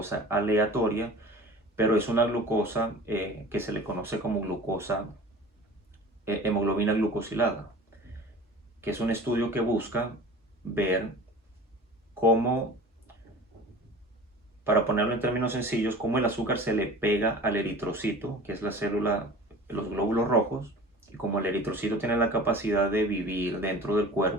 aleatoria, pero es una glucosa que se le conoce como glucosa, hemoglobina glucosilada, que es un estudio que busca ver cómo, para ponerlo en términos sencillos, cómo el azúcar se le pega al eritrocito, que es la célula, los glóbulos rojos, y como el eritrocito tiene la capacidad de vivir dentro del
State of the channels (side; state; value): both; normal; correlation 0.40